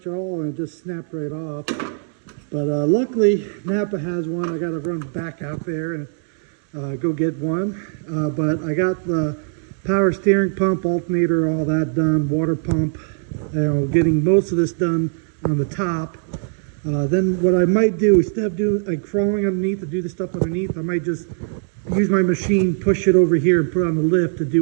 at all and it just snapped right off. But luckily, Napa has one. I got to run back out there and go get one. But I got the power steering pump, alternator, all that done, water pump, getting most of this done on the top. Then what I might do, instead of doing like crawling underneath to do the stuff underneath, I might just use my machine, push it over here and put it on the lift to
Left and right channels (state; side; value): silent; left; digital silence